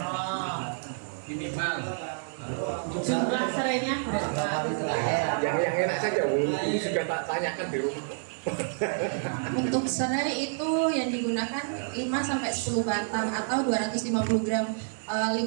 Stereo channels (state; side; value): silent; left; digital silence